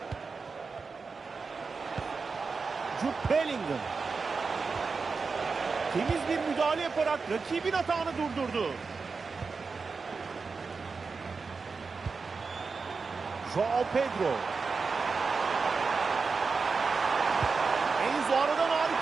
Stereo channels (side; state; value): left; quieter; 4.7 dB